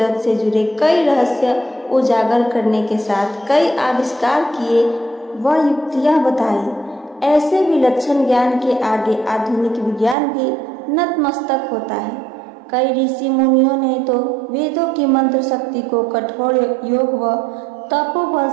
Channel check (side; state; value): left; drops out; at 10.2 s